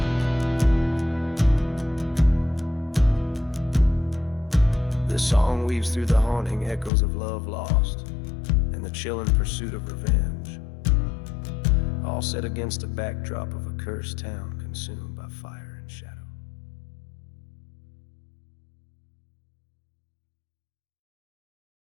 This song weaves through the haunting echoes of love lost and the chilling pursuit of revenge, all set against a backdrop of a cursed town consumed by fire and shadow.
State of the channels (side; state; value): right; drops out; at 6.9 s